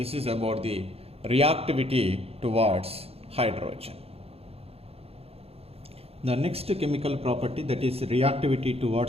is about the reactivity towards hydrogen. The next chemical property, that is reactivity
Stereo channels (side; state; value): left; late; 0.29 ms